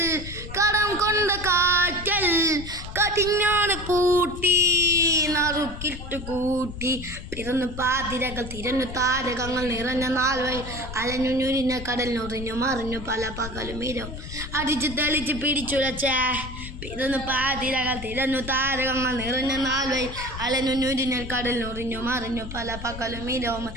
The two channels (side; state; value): left; noise; rumble, 10 dB below the sound